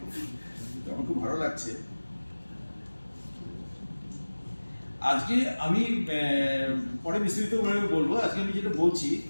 আমার খুব ভালো লাগছে। আজকে আমি পরে বিস্তারিতভাবে বলবো, আজকে আমি যেটা বলছি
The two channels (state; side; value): inverted; both; correlation -1.00